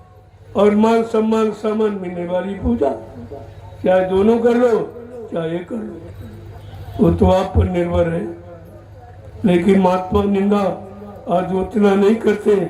और मान सम्मान सामान मिलने वाली पूजा, चाहे दोनों कर लो चाहे कर लो, वो तो आप पर निर्भर है। लेकिन महात्मा निंदा आज उतना नहीं करते,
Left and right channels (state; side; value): identical; both; correlation 1.00